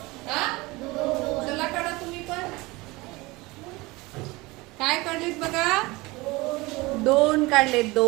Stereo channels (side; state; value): left; quieter; 22.5 dB